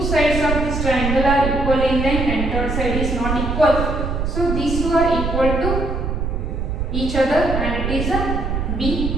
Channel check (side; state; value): right; noise; rumble, 2 dB below the sound